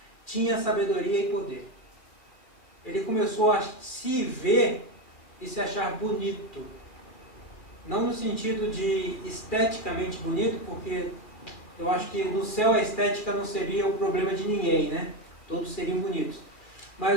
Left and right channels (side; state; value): right; late; 2.4 ms